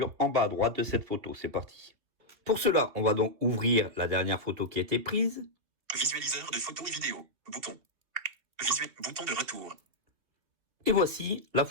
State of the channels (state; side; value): late; left; 2.5 ms